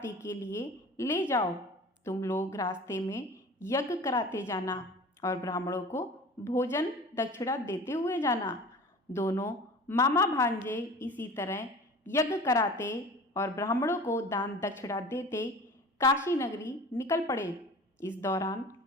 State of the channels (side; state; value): both; normal; correlation 0.40